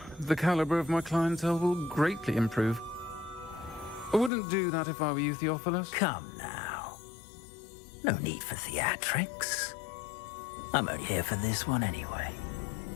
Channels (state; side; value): drops out; right; at 4.3 s